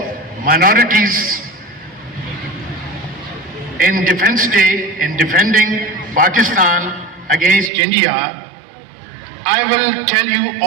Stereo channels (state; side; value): drops out; left; at 7.7 s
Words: minorities in Defense Day, in defending Pakistan against India. I will tell you